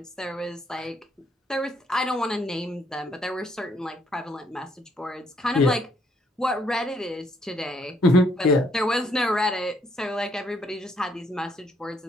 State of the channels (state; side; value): normal; both; correlation 0.69